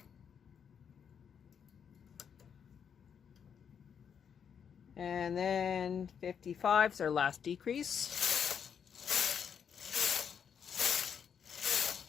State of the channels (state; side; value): quieter; right; 7.6 dB